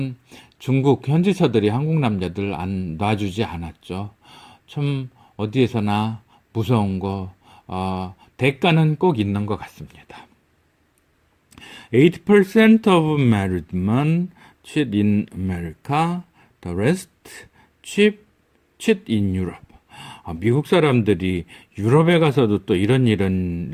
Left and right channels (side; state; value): both; identical; correlation 1.00